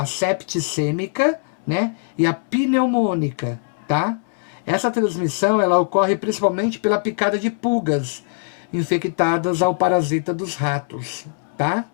septicêmica, né? E a pneumônica, tá? Essa transmissão, ela ocorre principalmente pela picada de pulgas infectadas ao parasita dos ratos, tá?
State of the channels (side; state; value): right; silent; 65 dB below the other